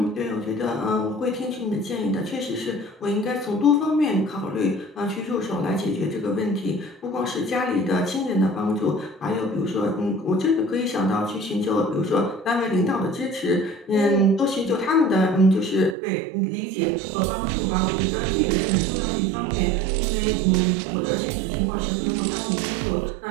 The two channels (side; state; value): left; drops out; at 16.0 s